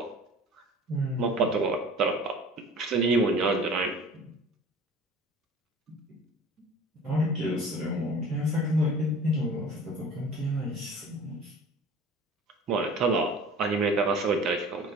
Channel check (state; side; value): normal; both; correlation 0.44